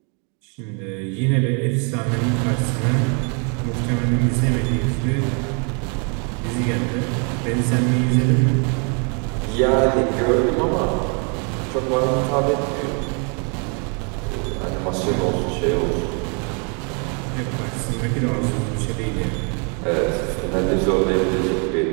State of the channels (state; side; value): quieter; left; 37.3 dB